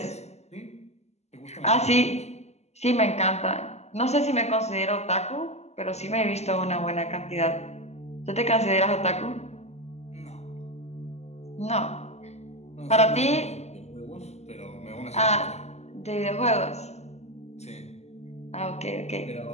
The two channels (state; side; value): late; right; 0.32 ms